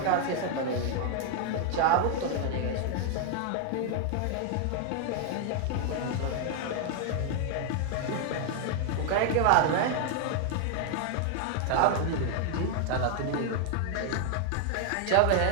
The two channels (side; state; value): both; different; correlation 0.00